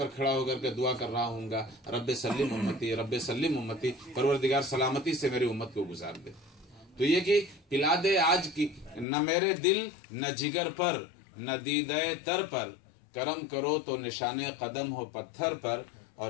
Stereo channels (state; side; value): drops out; right; at 9.1 s